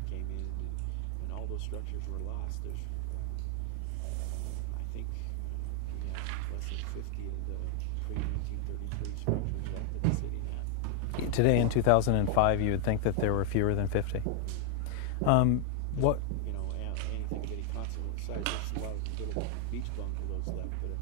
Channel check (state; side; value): different; both; correlation 0.00